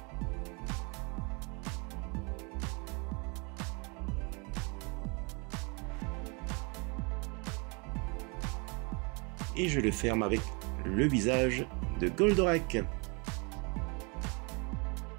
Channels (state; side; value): quieter; left; 31.7 dB